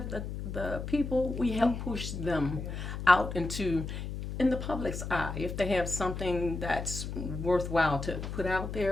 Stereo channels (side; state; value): left; noise; hum, 6 dB below the sound